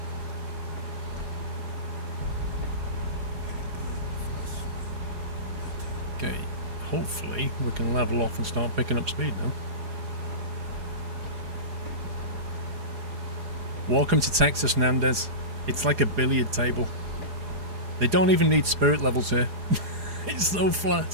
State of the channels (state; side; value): late; left; 4.8 ms